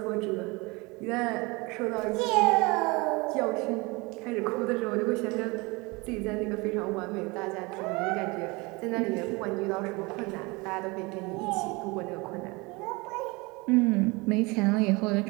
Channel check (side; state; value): left; quieter; 25.5 dB